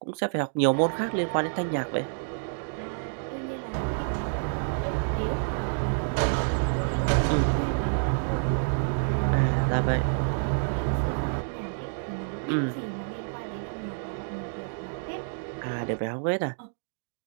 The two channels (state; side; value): silent; left; digital silence